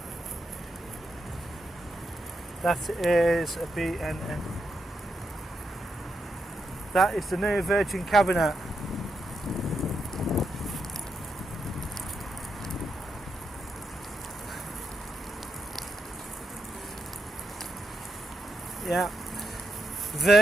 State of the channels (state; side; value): normal; both; correlation 0.83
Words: That is a BNN. That is the new Virgin cabinet. Yeah,